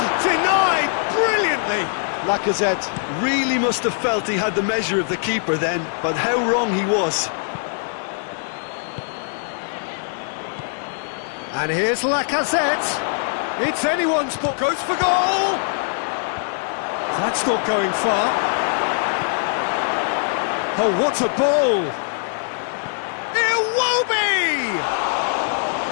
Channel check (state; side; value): silent; right; digital silence